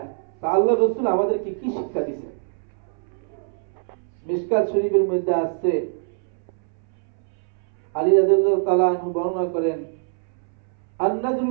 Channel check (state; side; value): silent; left; 60 dB below the other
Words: তা আল্লাহ রাসূল আমাদেরকে কি শিক্ষা দিয়েছেন? মিশকাত শরীফের মধ্যে আছে, আলী রাদিয়াল্লাহু তাআলা আনহু বর্ণনা করেন,